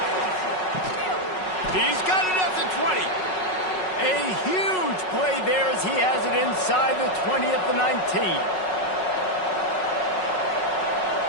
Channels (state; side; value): late; right; 5.4 ms